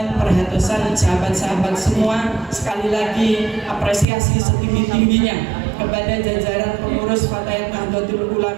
perhatosan sahabat-sahabat semua. Sekali lagi apresiasi setinggi-tingginya kepada jajaran pengurus Fatayat Nahdlatul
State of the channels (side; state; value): left; drops out; at 4.0 s